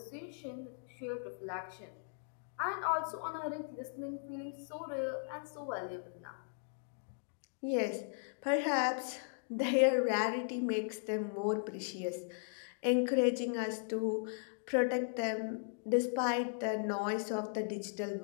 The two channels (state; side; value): silent; right; digital silence